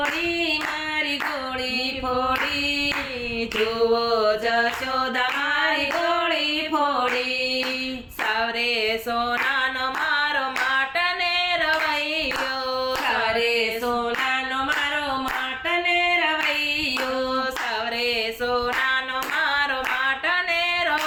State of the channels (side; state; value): both; identical; correlation 1.00